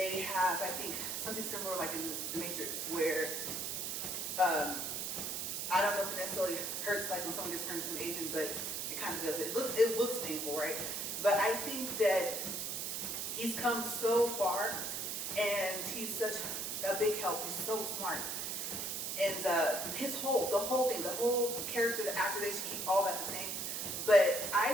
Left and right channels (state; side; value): noise; right; hiss, 3 dB below the sound